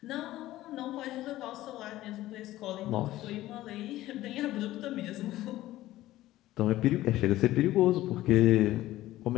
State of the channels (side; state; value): right; quieter; 15.6 dB